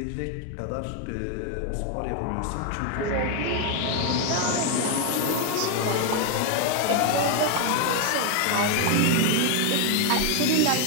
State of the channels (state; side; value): different; both; correlation 0.01